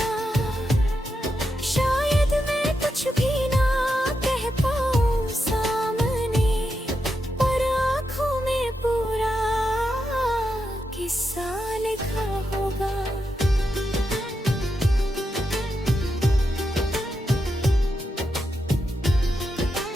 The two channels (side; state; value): both; normal; correlation 0.86